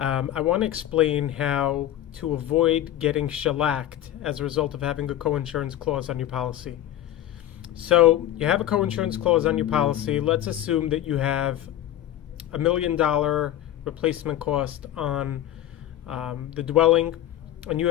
want to explain how to avoid getting shellacked as a result of having a co-insurance clause on your policy. So you have a co-insurance clause on your policy. Let's assume that you have $1 million replacement cost on the dwelling, and you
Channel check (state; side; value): quieter; right; 12.6 dB